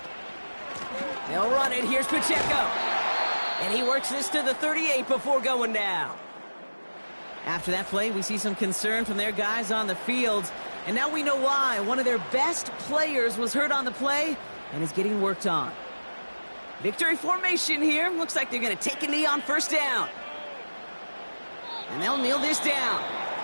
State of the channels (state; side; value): inverted; both; correlation -1.00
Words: They'll run it. Here's Pacheco. And he works this to the 38 before going down. After that play, we see some concern from their guys on the field. And now we know why. One of their best players was hurt on the play and is getting worked on. Victory formation here. Looks like they're going to take a knee on 1st down. And they'll kneel this down.